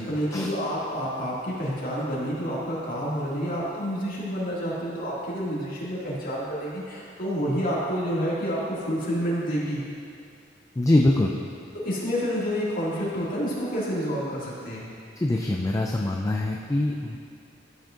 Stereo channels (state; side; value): normal; both; correlation 0.72